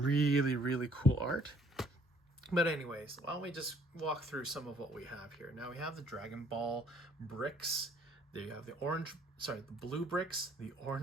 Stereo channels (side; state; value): both; normal; correlation 0.61